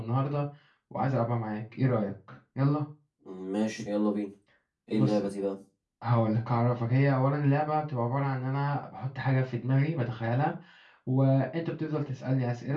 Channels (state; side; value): identical; both; correlation 1.00